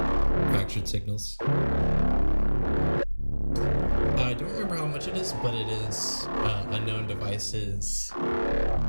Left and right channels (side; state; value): both; inverted; correlation -1.00